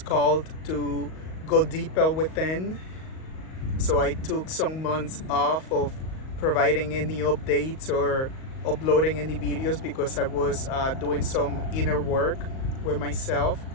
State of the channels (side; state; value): right; late; 38 ms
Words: called to go deeper within. So I took some months off of providing any updates or uploading any videos because I was doing some inner work with myself.